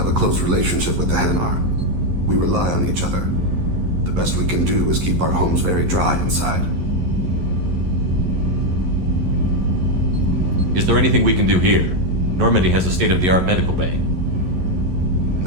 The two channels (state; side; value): late; left; 11 ms